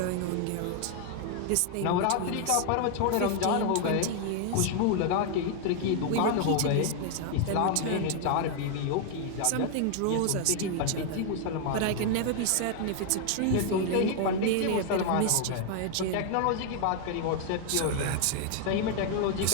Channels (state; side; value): different; both; correlation 0.00